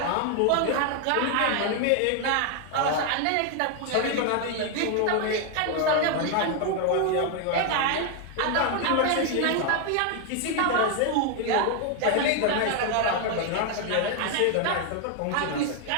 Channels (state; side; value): different; both; correlation 0.01